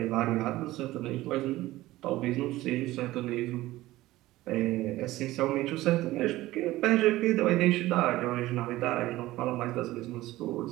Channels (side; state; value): left; quieter; 17.1 dB